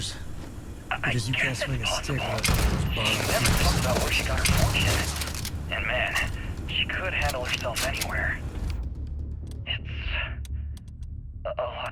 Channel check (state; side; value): identical; both; correlation 1.00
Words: Because you can't swing a stick without those She bars. never talked about where she got her fortune. And man, she could handle herself anywhere. It's a